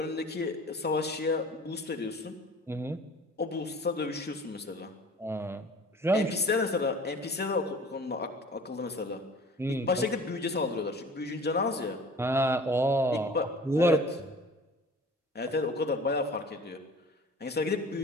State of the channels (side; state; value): both; normal; correlation 0.45